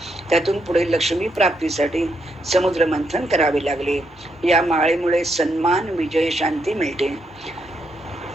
त्यातून पुढे लक्ष्मी प्राप्तीसाठी समुद्र मंथन करावे लागले. या माळेमुळे सन्मान, विजय, शांती मिळते.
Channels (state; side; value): normal; both; correlation 0.79